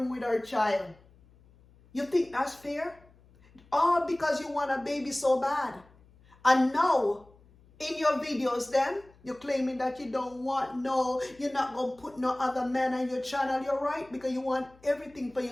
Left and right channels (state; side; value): noise; left; hum, 28 dB below the sound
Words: with her child. You think that's fair? All because you want a baby so bad. And now, in your videos then, you're claiming that you don't want you're not going to put no other man on your channel. You're right, because you want everything for